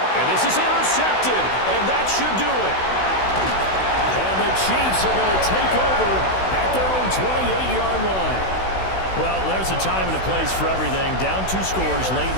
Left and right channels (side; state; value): right; late; 16 ms